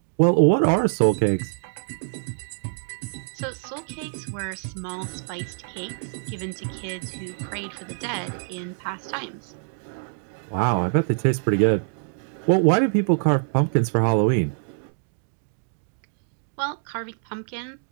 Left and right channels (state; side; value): silent; left; digital silence